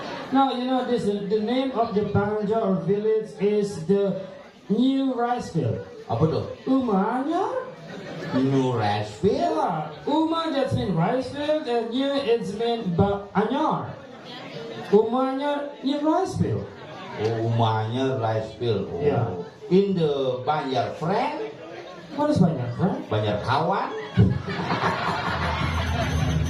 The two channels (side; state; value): both; identical; correlation 1.00